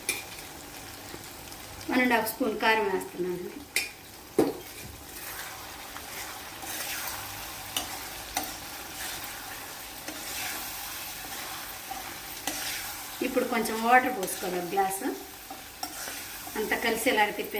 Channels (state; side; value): identical; both; correlation 1.00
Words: 1.5 స్పూన్ కారం వేస్తున్నాను. ఇప్పుడు కొంచెం వాటర్ పోసుకోవాలి, ఒక గ్లాసు అంతా కలిసేలాగా